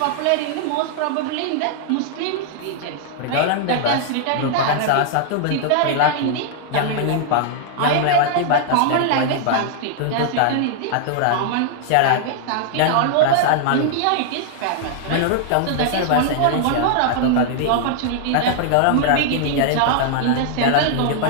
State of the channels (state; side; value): different; both; correlation -0.01